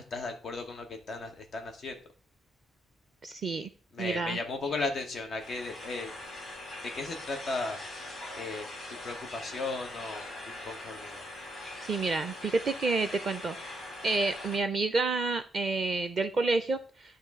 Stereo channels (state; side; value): normal; both; correlation 0.76